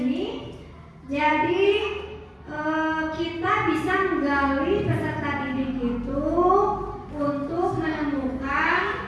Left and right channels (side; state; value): both; identical; correlation 1.00